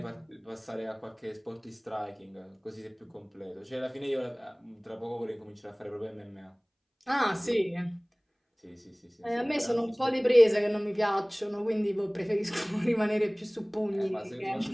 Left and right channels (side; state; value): both; identical; correlation 1.00